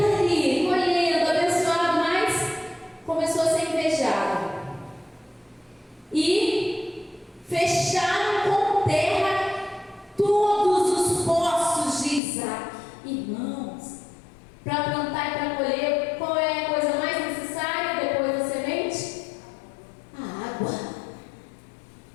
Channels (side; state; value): right; drops out; at 12.2 s